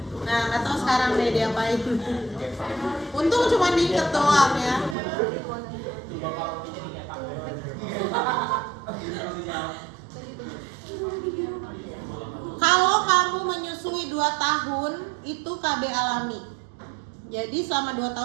Nah, nggak tahu sekarang deh dia apain. Untung cuma diikat doang ya. Kalau kamu menyusui 2 tahun itu KB alami. Jadi selama 2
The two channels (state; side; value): drops out; left; at 5.0 s